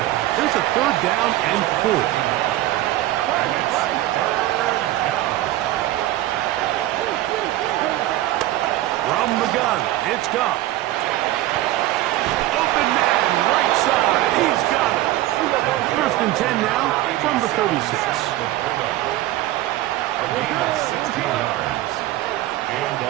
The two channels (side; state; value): left; quieter; 15.5 dB